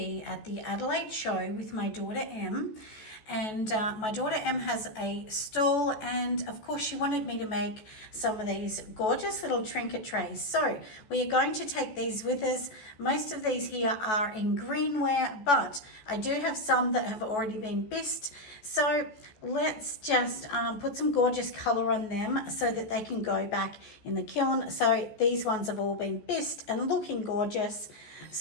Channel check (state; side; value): late; right; 14 ms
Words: at the Adelaide show with my daughter Em, and my daughter Em has a stall, and of course she wanted me to make some of these gorgeous little trinket trays. So we are going to take these with us. Most of these here are in greenware, but I do have some that have already been bisqued. So let's just put some gorgeous color on them so that they can go back in the kiln. So these ones have all been bisqued and looking gorgeous.